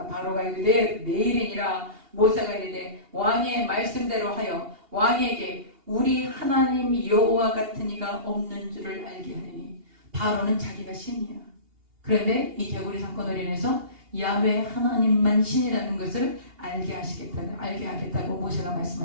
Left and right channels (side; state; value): left; late; 2.8 ms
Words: 바로가 이르되 내일이니라. 모세가 이르되 왕의 말씀대로 하여 왕에게 우리 하나님 여호와 같은 이가 없는 줄을 알게 하느니. 바로는 자기가 신이야. 그런데 이 개구리 사건으로 인해서 야훼 하나님만 신이라는 것을 알게 하겠다고 모세가